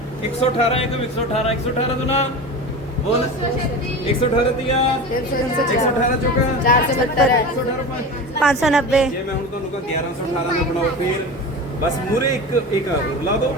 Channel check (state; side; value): normal; both; correlation 0.29